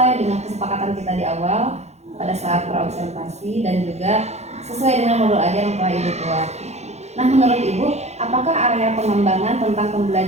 dengan kesepakatan kita di awal pada saat praobservasi, dan juga sesuai dengan modul ajar yang telah Ibu buat. Nah, menurut Ibu, apakah area pengembangan tentang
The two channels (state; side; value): late; left; 0.32 ms